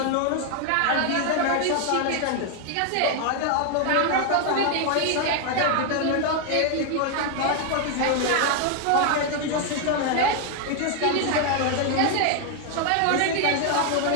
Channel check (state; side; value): different; both; correlation 0.00